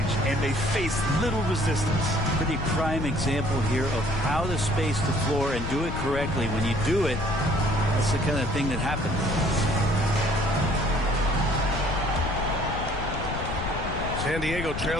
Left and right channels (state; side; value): noise; left; rumble, 5 dB below the sound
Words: and they faced little resistance. Pretty prime example here of how to space the floor and do it correctly. When you do it, that's the kind of thing that happens. San Diego